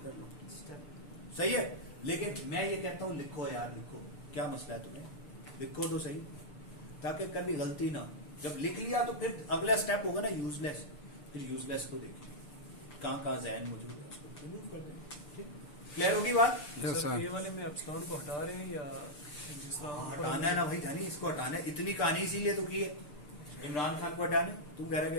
कर लो, स्टेप सही है। लेकिन मैं ये कहता हूँ लिखो यार, लिखो, क्या मसला है तुम्हें, लिखो तो सही, ताकि कभी गलती ना हो। जब लिख लिया तो फिर अगला स्टेप होगा ना यूजलेस, फिर यूजलेस को देखिए कहाँ जहन मौजूद है, उसको रिमूव कर दें। ठीक, क्लियर होगी बात? सर ये वाले में एप्सिलॉन को हटा रहे हैं या जिस तरह हटाना है ना भाई जानी, इसको हटाना है। इतनी कहानी इसीलिए तो की है इमरान खान को हटाने। तुम कह रहे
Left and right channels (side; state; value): right; late; 6.8 ms